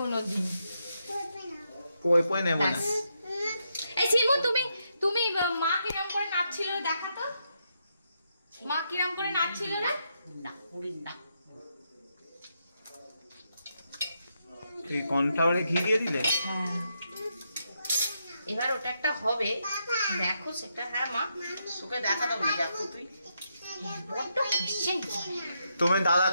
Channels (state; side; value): inverted; both; correlation -0.81